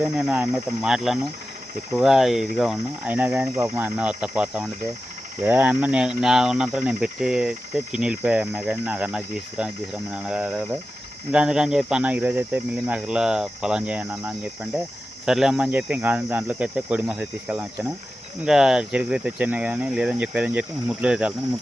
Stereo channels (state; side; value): normal; both; correlation 0.93